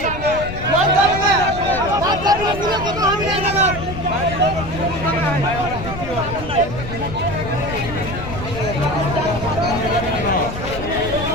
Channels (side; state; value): left; noise; rumble, 9 dB below the sound